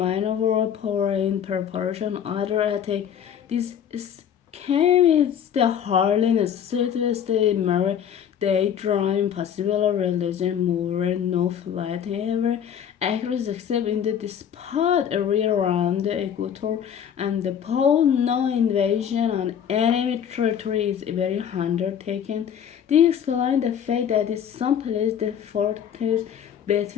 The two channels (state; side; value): quieter; right; 8.8 dB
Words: overall power in preparation other attack. This is came is the hardly necessary the mirror they drawing possible religion more no flight ever actors except in the spot area around the equator and the pole. No invasion on enemy territory is very undertaken. They explain the fact that in some places the fortress